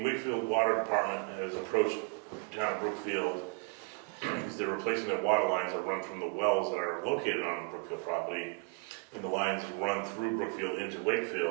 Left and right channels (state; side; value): quieter; left; 34.6 dB